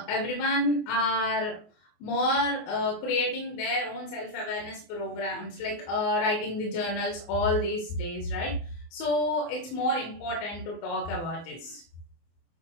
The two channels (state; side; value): late; right; 24 ms